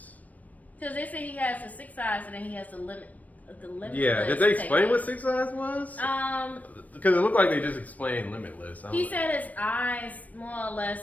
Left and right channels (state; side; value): late; right; 0.073 ms